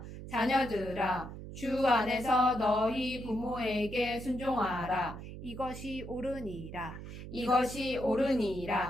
자녀들아, 주 안에서 너희 부모에게 순종하라. 이것이 옳으니라. 이것이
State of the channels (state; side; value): noise; right; hum, 11 dB below the sound